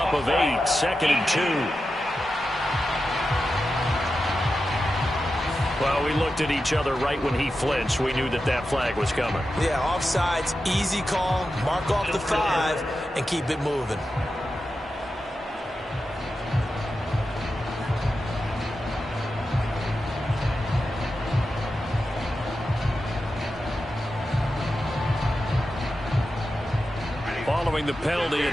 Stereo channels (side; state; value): both; normal; correlation 0.91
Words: of 8. 2nd and 2. Well, we looked at each other right when he flinched. We knew that that flag was coming. Yeah, offsides, easy call. Mark off the 5 and keep it moving. Following the penalty,